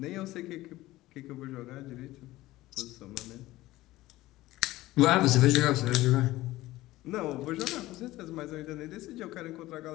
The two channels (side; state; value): right; quieter; 17.2 dB